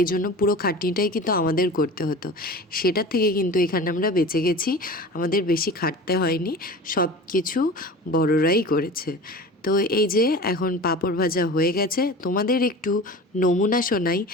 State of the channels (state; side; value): normal; both; correlation 0.36